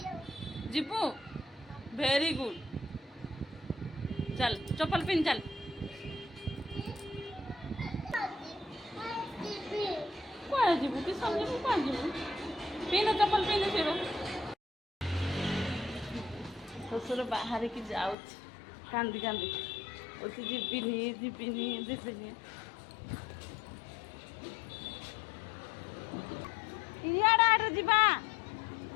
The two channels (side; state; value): right; drops out; at 18.2 s